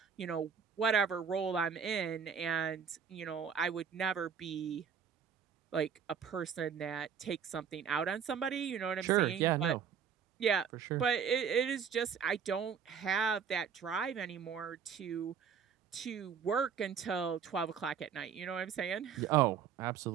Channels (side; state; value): left; quieter; 7.3 dB